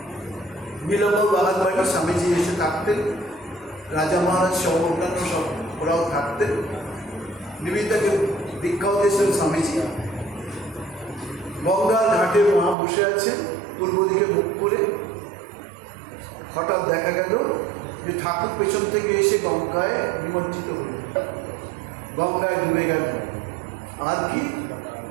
নীলম্ব বাগান বাড়ি স্বামীজি এসে থাকতেন, রাজা মহারাজ সহ অন্যান্য সব ওরাও থাকতেন। নিবেদিতাকে দীক্ষাও দিয়েছিলেন স্বামীজি। গঙ্গার ঘাটে মা বসে আছেন, পূর্ব দিকে মুখ করে। হঠাৎ দেখা গেল যে ঠাকুর পেছন থেকে এসে গঙ্গায় নিমজ্জিত হল, গঙ্গায় ডুবে গেল। আর কি,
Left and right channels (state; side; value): drops out; left; at 12.8 s